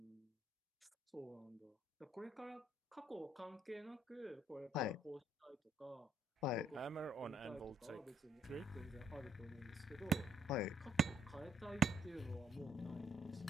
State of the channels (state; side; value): normal; both; correlation 0.71